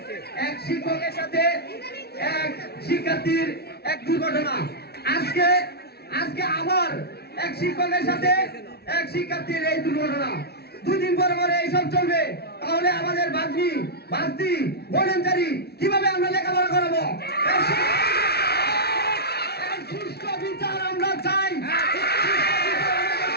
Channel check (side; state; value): right; late; 0.47 ms